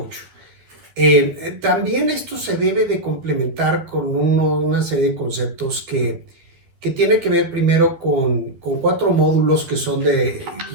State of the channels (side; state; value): left; late; 12 ms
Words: También esto se debe de complementar con una serie de conceptos que tiene que ver primero con 4 módulos que son que